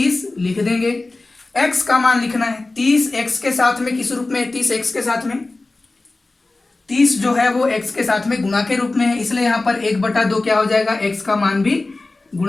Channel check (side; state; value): right; quieter; 3.2 dB